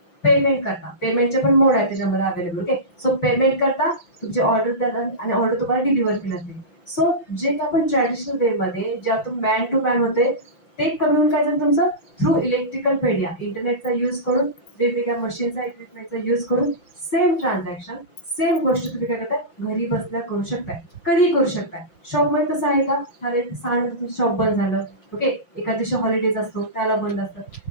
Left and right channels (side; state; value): right; late; 5.9 ms